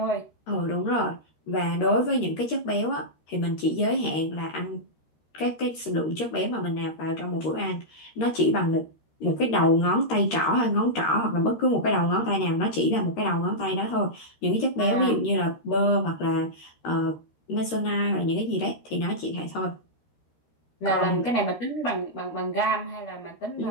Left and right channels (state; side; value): late; right; 13 ms